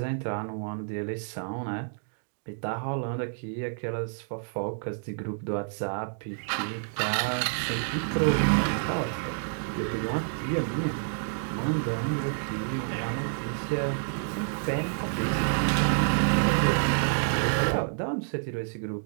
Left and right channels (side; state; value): left; silent; digital silence